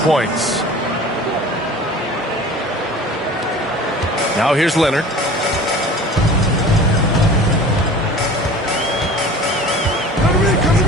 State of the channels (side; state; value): both; normal; correlation 0.41